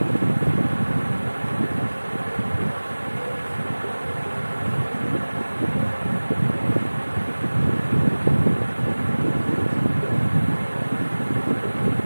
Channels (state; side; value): inverted; both; correlation -1.00